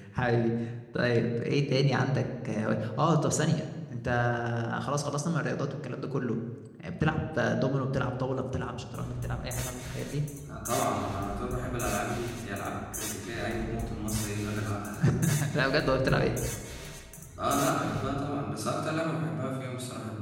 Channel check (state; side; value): identical; both; correlation 1.00